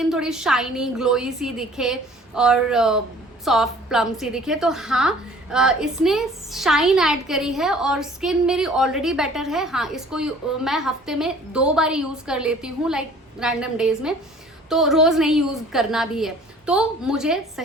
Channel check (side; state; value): both; normal; correlation 0.51